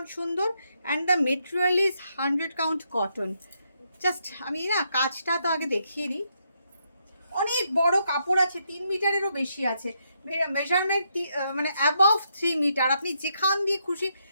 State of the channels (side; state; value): both; inverted; correlation -0.78